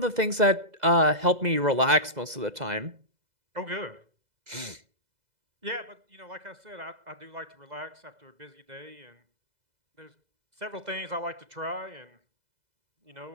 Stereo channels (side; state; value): left; late; 2.0 ms